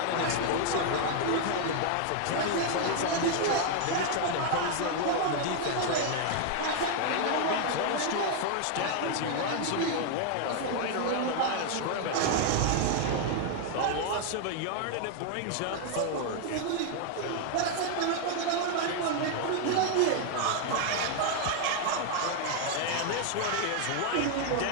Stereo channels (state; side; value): different; both; correlation 0.00